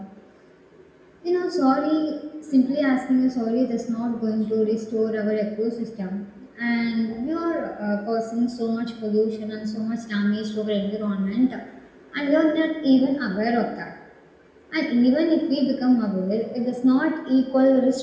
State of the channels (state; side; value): identical; both; correlation 1.00